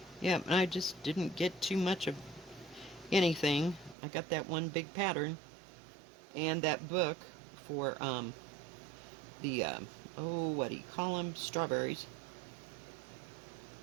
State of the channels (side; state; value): left; drops out; at 4.0 s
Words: yeah, I just didn't get too much of anything. I got that one big pattern and that book for the what do you call them? Strawberries.